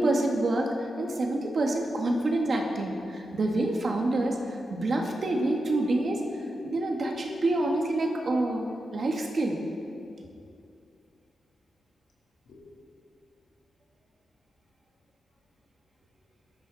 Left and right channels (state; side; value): normal; both; correlation 0.89